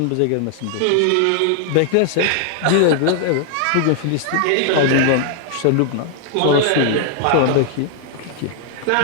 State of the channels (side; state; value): both; different; correlation 0.00